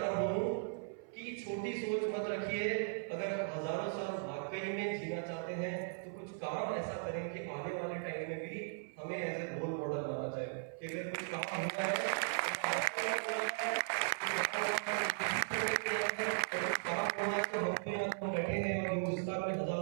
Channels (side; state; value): left; silent; 53 dB below the other